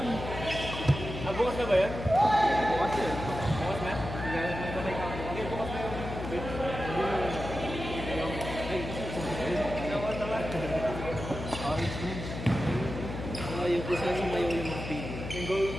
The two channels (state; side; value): noise; left; hum, 7 dB below the sound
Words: Bukas na ba yan? Bukas yun. Bukas na? Okay, bukas na yun. Orange bridge. Yung kung saan sumayo yung mga pig. Yung